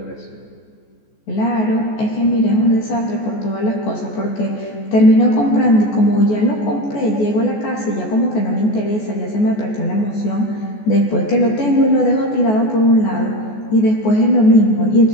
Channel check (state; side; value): late; right; 14 ms